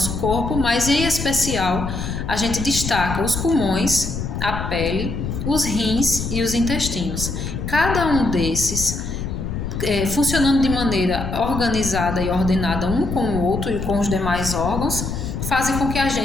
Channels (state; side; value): noise; left; rumble, 5 dB below the sound